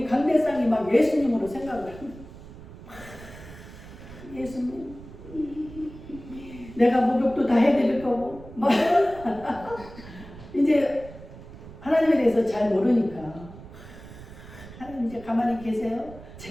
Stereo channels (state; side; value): noise; right; rumble, 16 dB below the sound